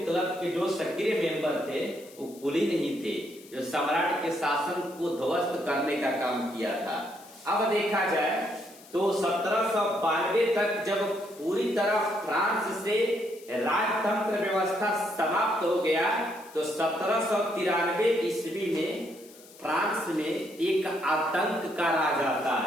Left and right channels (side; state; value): left; noise; hiss, 22 dB below the sound